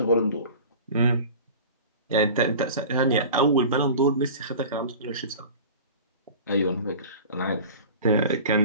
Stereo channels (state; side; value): inverted; both; correlation -0.38